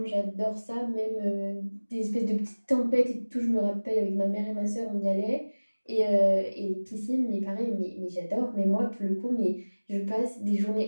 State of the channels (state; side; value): inverted; both; correlation -1.00